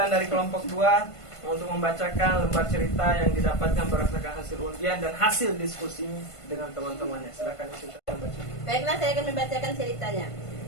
dari kelompok 2 untuk membacakan lembar cerita yang didapatkan berdasarkan hasil undian dan hasil diskusi dengan teman-temannya. Silakan Ibu Fitra membaca. Baiklah, saya akan membacakan ceritanya.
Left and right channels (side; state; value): right; late; 1.5 ms